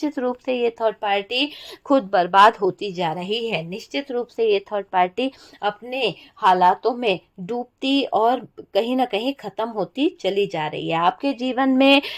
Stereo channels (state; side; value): identical; both; correlation 1.00